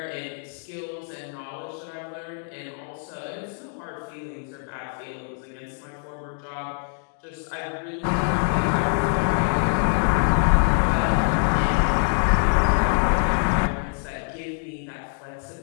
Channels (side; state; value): right; silent; 62 dB below the other